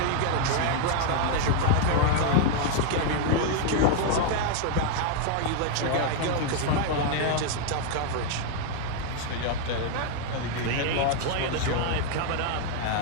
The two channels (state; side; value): different; both; correlation 0.00